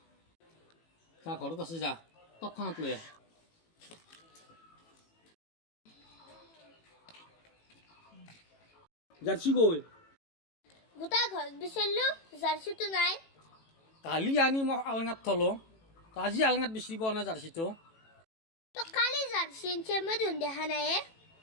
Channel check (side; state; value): right; late; 18 ms